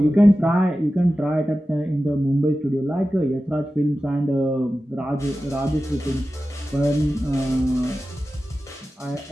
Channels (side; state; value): both; normal; correlation 0.94